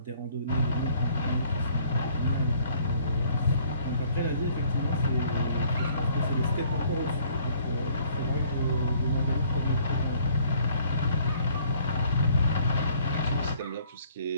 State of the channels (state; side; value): inverted; both; correlation -0.60